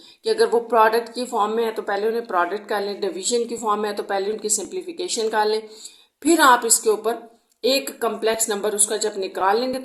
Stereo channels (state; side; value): identical; both; correlation 1.00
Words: कि अगर वो प्रोडक्ट की फॉर्म में है तो पहले उन्हें प्रोडक्ट कर लें, डिवीजन की फॉर्म में है तो पहले उनकी सिंप्लीफिकेशन कर लें, फिर आप इसके ऊपर एक कम्प्लेक्स नंबर उसका जब निकाल लेंगे